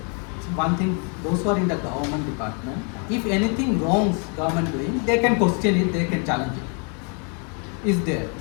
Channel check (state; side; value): quieter; right; 38.2 dB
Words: those who are in the government department, if anything wrongs government doing, they can question it, they can challenge it. Is there,